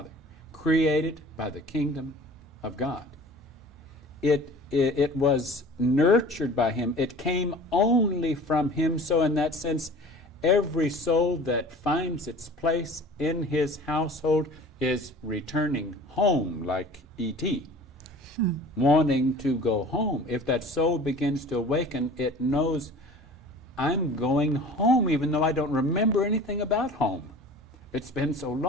created by the kingdom of God. It it was nurtured by him. It came only from him. So in that sense, every soul that finds its place in his household is returning home, like E.T., wanting to go home. If that soul begins to awaken, it knows, I'm going home, even though I don't remember anything about home. It's been so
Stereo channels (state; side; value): normal; both; correlation 0.43